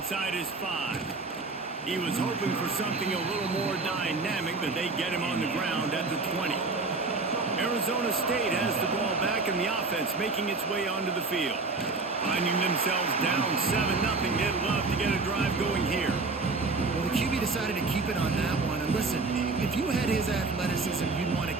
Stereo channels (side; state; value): left; quieter; 3.8 dB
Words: his 5. He was hoping for something a little more dynamic, but they get him on the ground at the 20. Arizona State has the ball back in the offense, making its way onto the field. Finding themselves down 7-0, they'd love to get a drive going here. Well, the QB decided to keep it on that one. And listen, if you had his athleticism, you'd want to